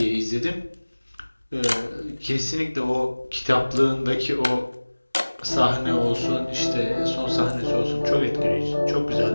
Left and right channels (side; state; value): both; inverted; correlation -1.00